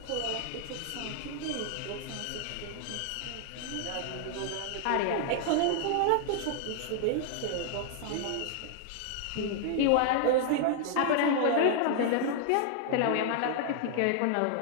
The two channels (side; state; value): both; different; correlation 0.00